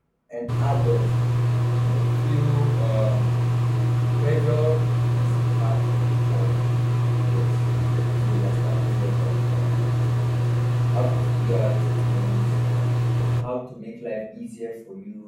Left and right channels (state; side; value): identical; both; correlation 1.00